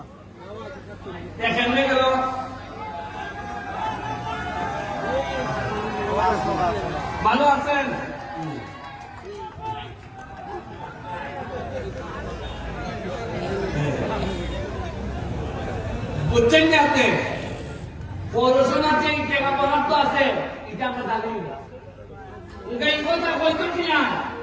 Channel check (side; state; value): both; identical; correlation 1.00